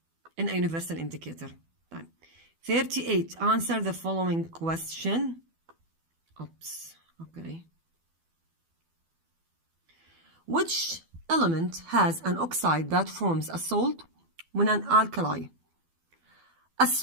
in a universal indicator. 38. Answer the following question. Oops. Okay. Which element has an oxide that forms a salt when an alkali? A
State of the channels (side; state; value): left; late; 12 ms